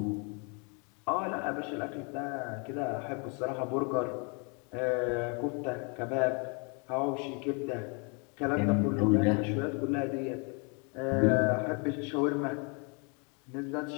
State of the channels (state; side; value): quieter; right; 34.5 dB